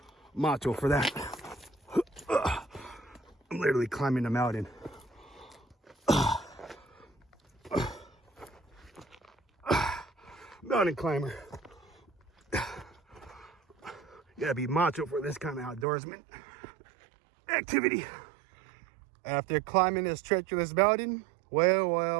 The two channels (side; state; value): left; drops out; at 15.9 s